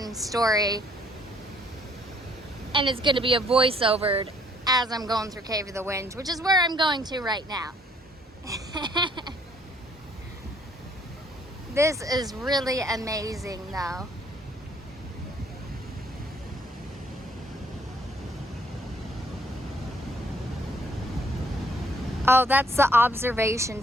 story. And it's gonna be a voiceover as I'm going through Cave of the Winds, which is where I'm going to right now. This is really amazing though. Oh, that's the observation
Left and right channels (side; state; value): both; normal; correlation 0.63